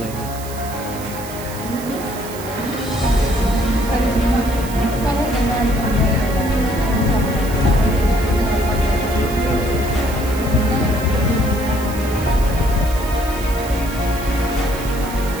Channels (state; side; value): noise; right; hiss, 14 dB below the sound